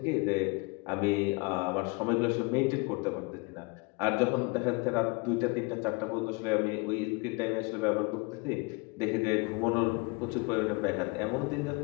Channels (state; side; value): quieter; right; 28.6 dB